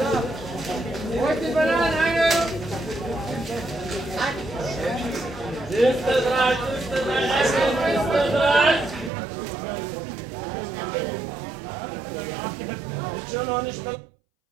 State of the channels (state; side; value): drops out; left; at 9.1 s